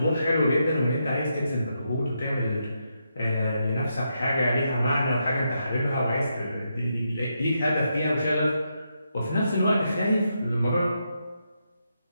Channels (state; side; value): inverted; both; correlation -0.82